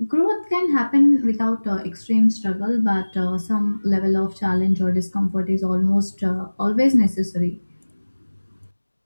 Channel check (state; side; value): inverted; both; correlation -1.00